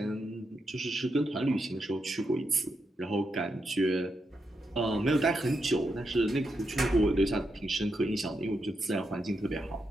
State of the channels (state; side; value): normal; both; correlation 0.84